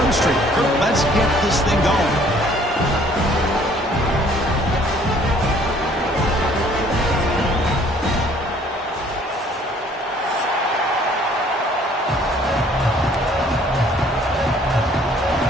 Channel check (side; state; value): both; normal; correlation 0.58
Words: Kirk, let's get this thing going.